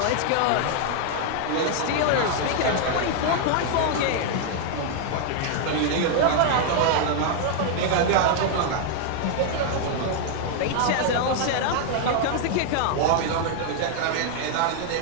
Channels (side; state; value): both; different; correlation 0.00